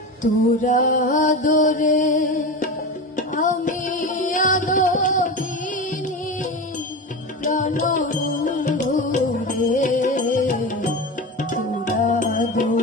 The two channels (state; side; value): normal; both; correlation 0.25